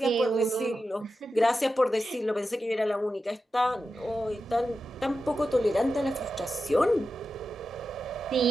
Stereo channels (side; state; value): both; normal; correlation 0.91